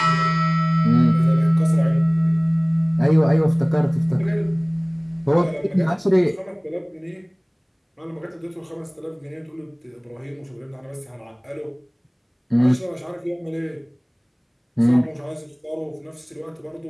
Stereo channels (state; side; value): identical; both; correlation 1.00